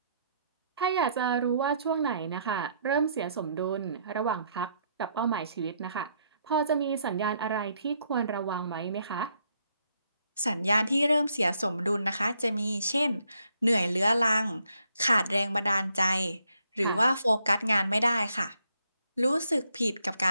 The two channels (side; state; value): both; inverted; correlation -0.73